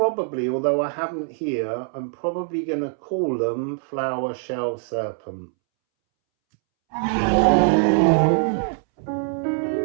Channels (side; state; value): left; silent; 63 dB below the other